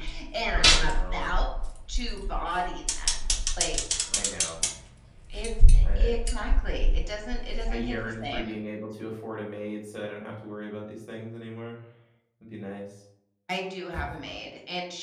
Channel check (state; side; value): identical; both; correlation 1.00